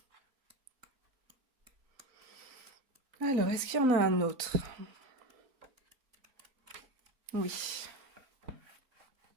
Alors, est-ce qu'il y en a un autre? Oui.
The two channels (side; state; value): left; late; 3.9 ms